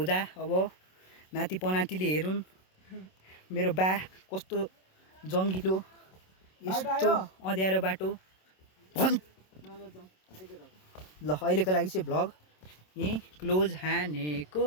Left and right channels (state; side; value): late; right; 27 ms